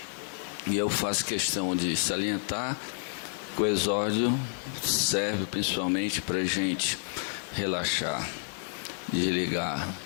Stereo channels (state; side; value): silent; right; digital silence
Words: e eu faço questão de salientar que o exórdio serve principalmente para a gente relaxar, desligar